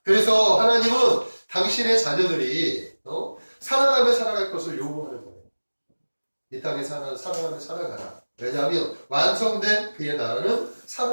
그래서 하나님은 당신의 자녀들이 사랑하며 살아갈 것을 요구하는 거예요. 이 땅에 사랑하며 살아가라. 왜냐하면 완성된 그의 나라는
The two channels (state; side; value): inverted; both; correlation -1.00